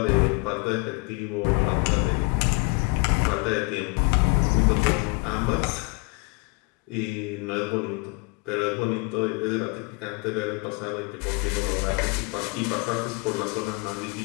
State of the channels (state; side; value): quieter; right; 30.5 dB